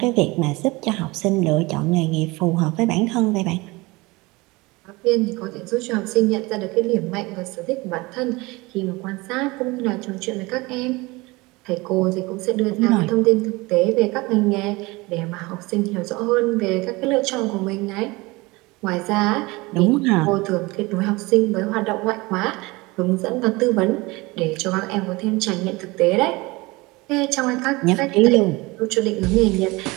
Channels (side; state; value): left; quieter; 23.2 dB